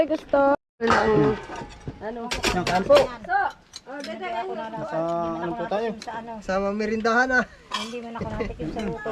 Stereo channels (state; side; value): identical; both; correlation 1.00